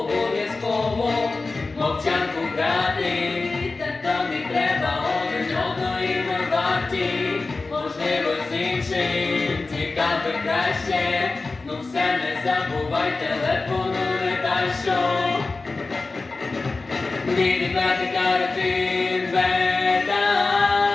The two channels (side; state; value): right; quieter; 3.7 dB